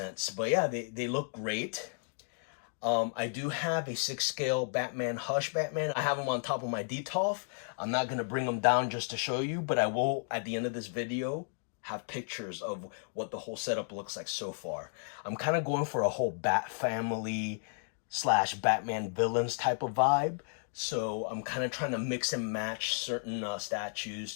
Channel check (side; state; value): right; silent; digital silence